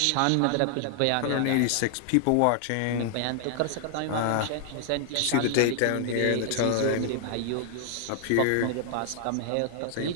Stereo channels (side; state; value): both; different; correlation 0.00